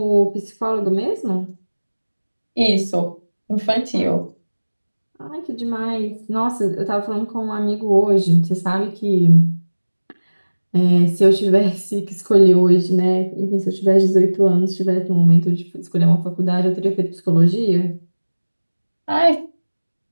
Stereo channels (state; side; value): inverted; both; correlation -1.00